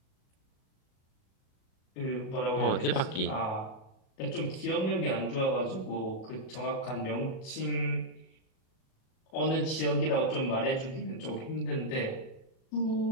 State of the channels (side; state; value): right; late; 37 ms